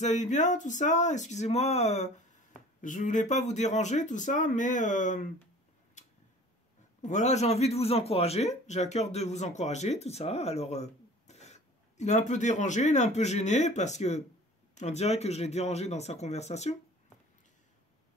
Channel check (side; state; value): both; normal; correlation 0.46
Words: allez bien, tout ça? Excusez-moi, je voulais pas vous déranger, tout ça, mais voilà, j'ai envie de vous encourager, j'ai à cœur de vous encourager, tout ça. Alors, il est un peu dérangé, il est un peu gêné parce que on dirait que je l'ai dérangé dans sa conversation.